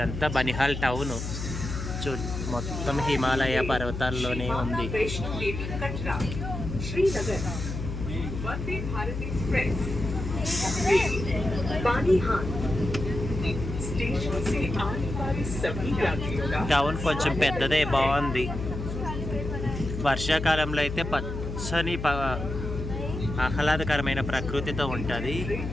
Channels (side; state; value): left; noise; hum, 5 dB below the sound